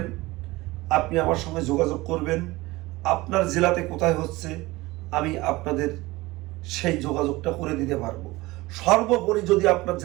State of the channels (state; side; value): quieter; left; 20.4 dB